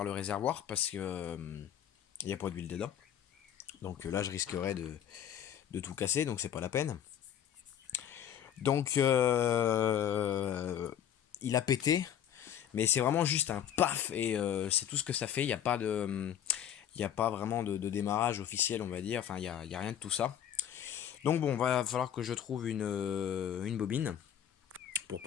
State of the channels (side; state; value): right; quieter; 9.7 dB